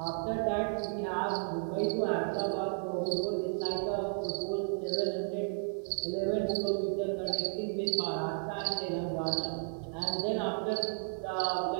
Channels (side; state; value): left; silent; digital silence